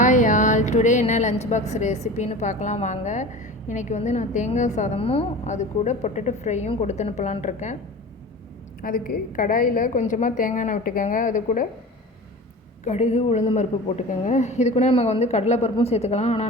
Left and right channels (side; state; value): both; normal; correlation 0.35